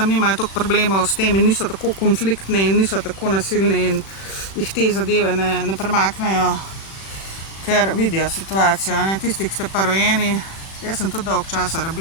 nimajo toliko problemov s tem in niso tako konfliktni in niso tako nasilni in jih te zadeve ne premaknejo, ker vidijo situacijo, ne. Tisti, ki ste pa rojeni, jaz sem tudi dolgo časa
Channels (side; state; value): right; late; 36 ms